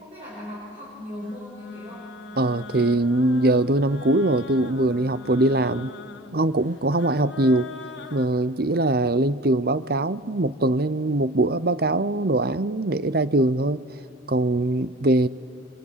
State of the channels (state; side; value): normal; both; correlation 0.42